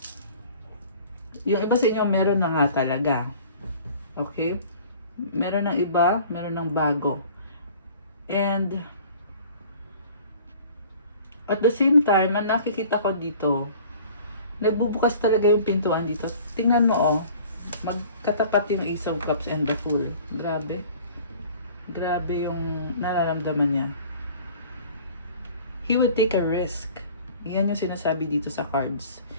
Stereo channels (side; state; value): both; inverted; correlation -0.48